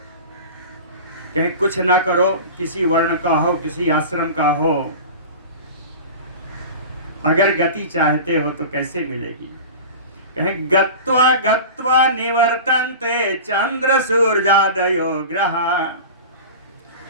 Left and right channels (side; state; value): both; inverted; correlation -0.34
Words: कहीं कुछ ना करो, किसी वर्ण का हो, किसी आश्रम का हो, अगर गति चाहते हो तो कैसे मिलेगी? कहें गत्वा गत्वा निवर्तन्ते चंद्र सूर्यादयो ग्रह।